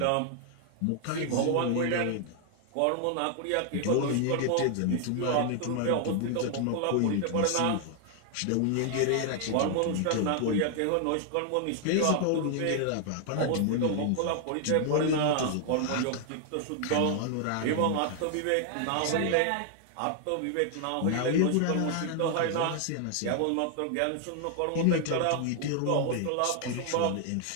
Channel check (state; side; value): different; both; correlation 0.00